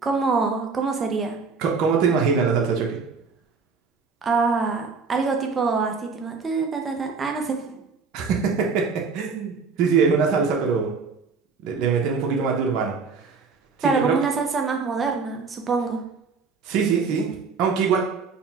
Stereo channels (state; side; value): quieter; left; 5.0 dB